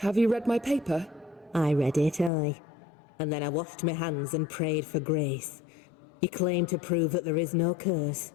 you read my paper? I read it, aye. And then I washed my hands and prayed for grace. You claim to prove that there is no curse.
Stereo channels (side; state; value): right; drops out; at 2.3 s